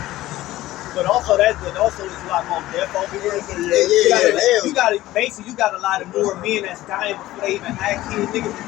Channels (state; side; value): quieter; right; 16.0 dB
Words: But also there's a lot more death over here. You got a lot of more men that's dying before they even have kids. Niggas